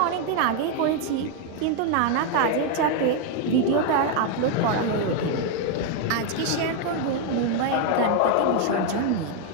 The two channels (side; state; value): both; different; correlation 0.01